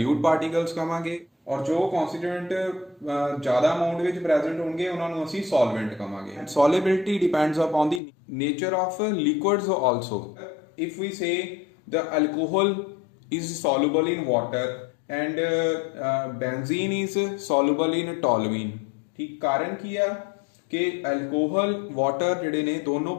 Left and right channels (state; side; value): drops out; right; at 8.0 s